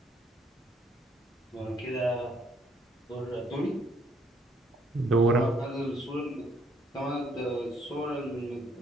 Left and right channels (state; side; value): normal; both; correlation 0.67